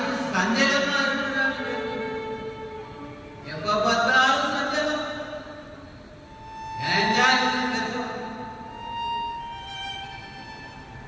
சஞ்சலமா இருக்கிறான். எப்ப பார்த்தாலும் சஞ்சலம்.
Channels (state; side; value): identical; both; correlation 1.00